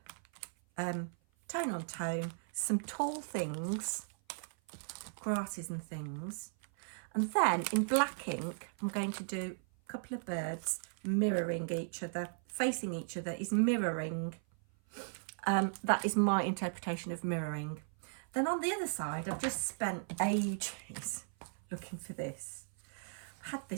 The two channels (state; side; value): silent; left; 53 dB below the other